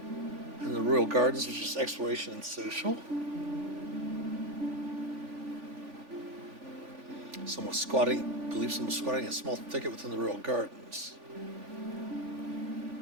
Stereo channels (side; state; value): left; late; 3.5 ms